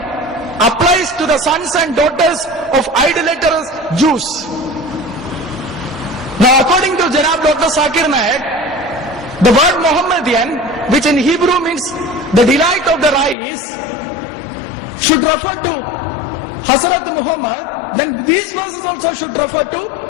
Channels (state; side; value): drops out; right; at 13.4 s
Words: applies to the sons and daughters of idolatrous Jews. Now according to Janab Dr. Zakir Naik, the word Muhammadian, which in Hebrew means the delight of the eyes, should refer to Hazrat Muhammad, then these verses also should refer to